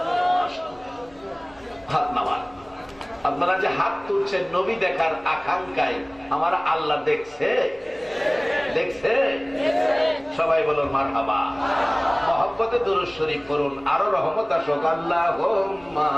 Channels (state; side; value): noise; left; hum, 28 dB below the sound